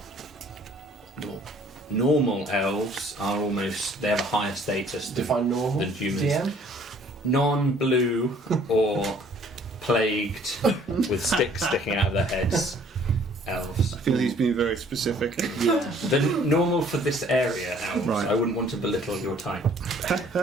normal elves are almost, they have a higher status than Define normal. than humans. DM. Non-blue or plagued with sticks sticking out of their heads. Elves. I feel he's being very specific. yeah. The normal for this area, elves. Right. I wouldn't want to belittle your type.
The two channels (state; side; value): normal; both; correlation 0.57